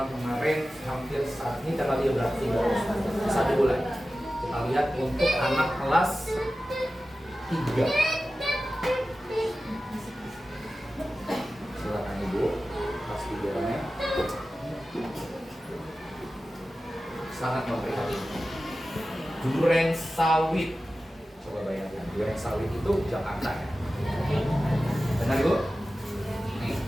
kemarin hampir saat ini tanggal 13 1 bulan. Kita lihat untuk anak kelas 3. Silakan Ibu, kelas 3-nya. Sangat memprihatinkan. Duren Sawit. Coba bayangkan, Duren Sawit itu Jakarta ya. Benar Ibu? Nih,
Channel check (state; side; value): normal; both; correlation 0.94